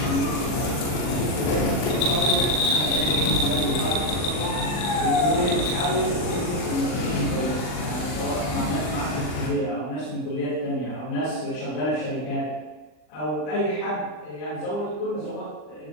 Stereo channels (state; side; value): late; right; 40 ms